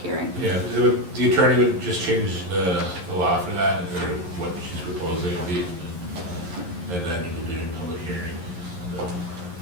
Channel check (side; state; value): left; late; 11 ms